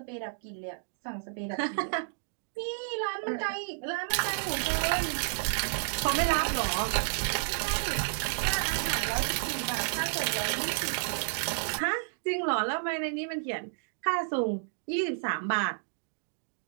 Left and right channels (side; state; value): left; silent; digital silence